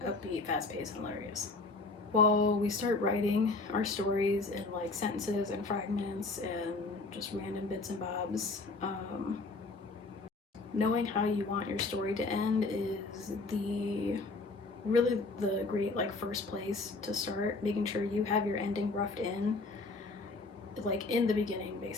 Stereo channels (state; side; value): quieter; right; 3.5 dB